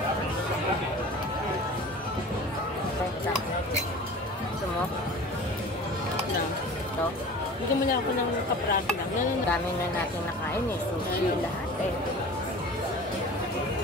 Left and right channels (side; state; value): both; normal; correlation 0.39